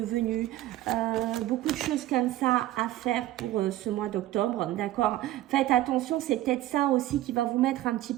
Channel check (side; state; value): left; quieter; 14.8 dB